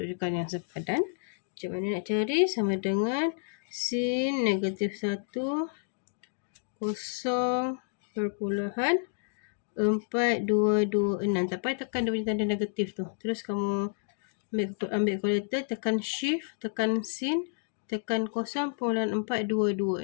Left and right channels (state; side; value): silent; right; digital silence